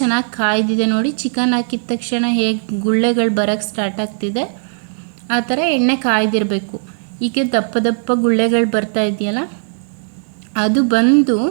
ಕಾಯ್ದಿದೆ ನೋಡಿ. ಚಿಕನ್ ಹಾಕಿದ ತಕ್ಷಣ ಹೇಗೆ ಗುಳ್ಳೆಗಳು ಬರೋಕ್ಕೆ ಸ್ಟಾರ್ಟ್ ಆಗ್ತಿದೆ, ಆ ಥರ ಎಣ್ಣೆ ಕಾಯ್ದಿರಬೇಕು. ಈಗ ದಪ್ಪ ದಪ್ಪ ಗುಳ್ಳೆಗಳು ಬರ್ತಾ ಇದೆಯಲ್ಲ, ಅದು ಬಂದು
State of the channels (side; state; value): left; silent; 68 dB below the other